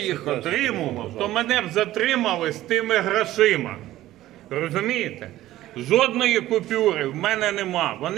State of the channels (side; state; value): left; quieter; 14.9 dB